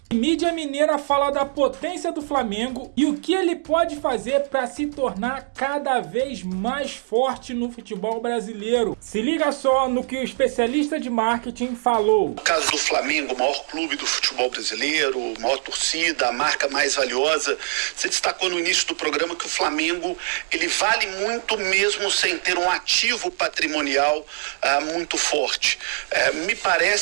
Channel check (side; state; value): left; silent; digital silence